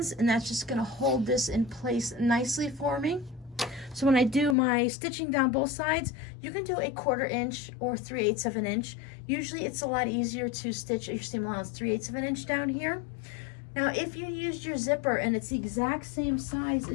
and that's just going to hold this in place nicely for me. So when I do my stitching down both sides, you can do 1/4 inch or 3/8 of an inch. Usually it's a lot easier to stitch your seam allowance 3/8 of an inch down here. Now if you used your zipper and it's the exact same size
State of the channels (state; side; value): drops out; right; at 4.5 s